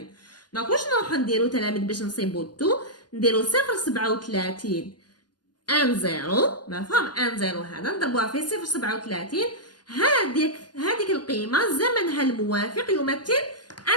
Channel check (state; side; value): late; right; 0.70 ms